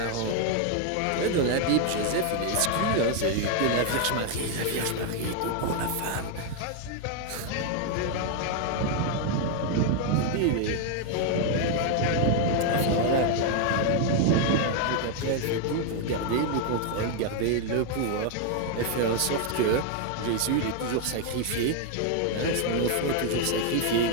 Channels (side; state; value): both; different; correlation 0.01